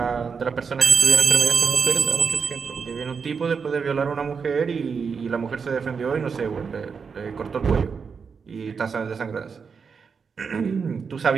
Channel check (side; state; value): left; quieter; 5.8 dB